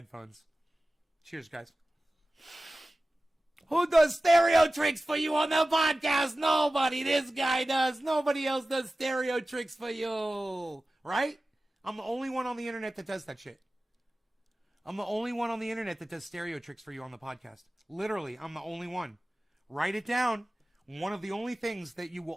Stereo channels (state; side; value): normal; both; correlation 0.96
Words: Cheers, guys. Who does stereo tricks for you on the podcast? Nobody. This guy does. Nobody else does stereo tricks for you. Right? I'm the only one on the internet that does that shit. I'm the only one on the internet that does stereo tricks for you on the podcast. Literally, I'm the only one. Write it down. One of the only things that you